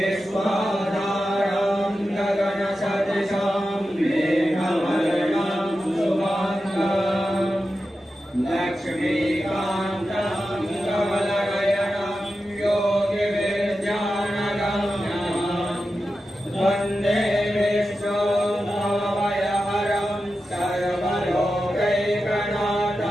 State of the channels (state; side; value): normal; both; correlation 0.91